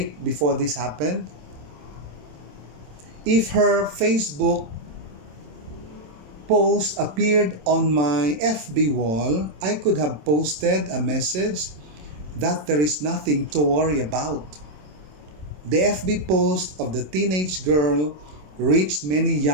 before this happened. If her Facebook post appeared on my FB wall, I could have posted a message that there is nothing to worry about. The FB post of the teenage girl reached many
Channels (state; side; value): late; left; 27 ms